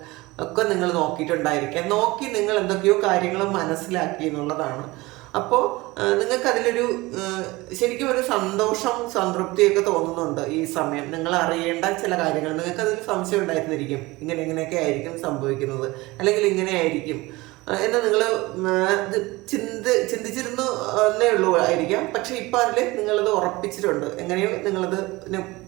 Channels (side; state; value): left; quieter; 21.3 dB